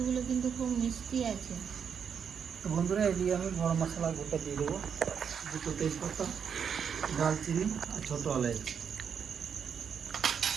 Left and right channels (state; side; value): quieter; left; 7.3 dB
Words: কিন্তু খুব মিষ্টি আছে। তো বন্ধুরা এদিকে আমি গরম মশলা গোটা দিয়ে দেবো, দুটো তেজপাতা, দারচিনি আর ছোটো এলাচ।